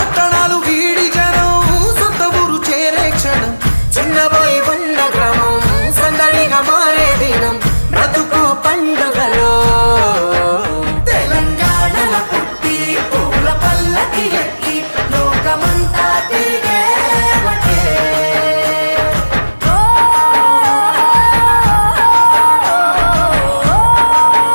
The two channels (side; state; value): both; inverted; correlation -1.00